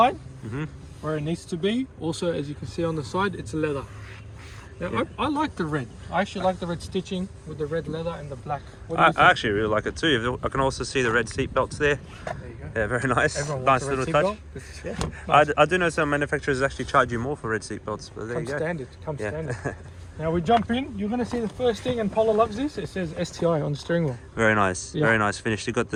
where it needs to be. Also, as you can see on the side, it's leather. Now, I like the red. I actually like the red stitching with the red leather and the black. I actually really like it too. I can also see the red seat belts there. There you go. Yeah, very nice. Everyone Nice wants a little red touch. seat belt. Yeah. I do know some manufacturers actually charge you more for red seat belts, but there you go. Standard. Standard. Now we jump in. You're going to see the first thing, and Paula loves this. It says STI on the steering wheel. Very nice. Yeah. Very nice finish. You've got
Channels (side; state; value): both; identical; correlation 1.00